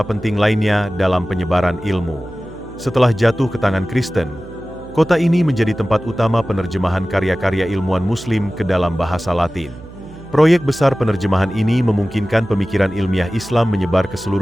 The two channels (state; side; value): noise; right; hum, 18 dB below the sound